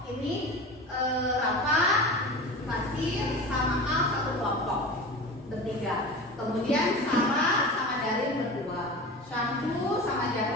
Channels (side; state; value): both; normal; correlation 0.32